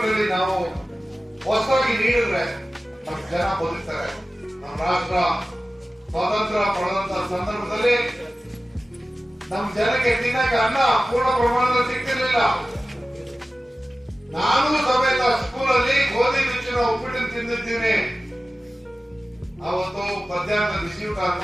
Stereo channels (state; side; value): normal; both; correlation 0.96